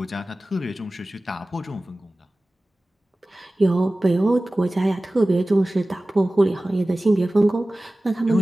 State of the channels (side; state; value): both; normal; correlation 0.97